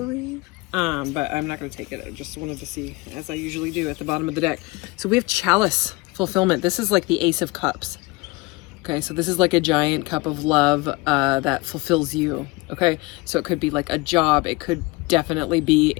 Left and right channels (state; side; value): quieter; right; 24.0 dB